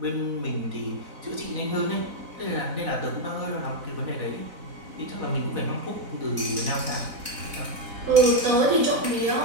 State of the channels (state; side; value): late; left; 4.0 ms